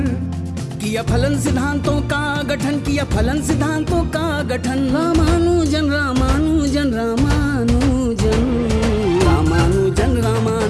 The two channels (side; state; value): both; identical; correlation 1.00